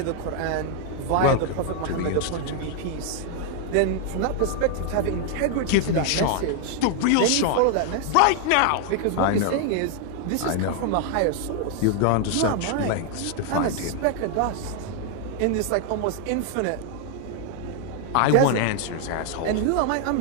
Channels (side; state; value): both; different; correlation 0.00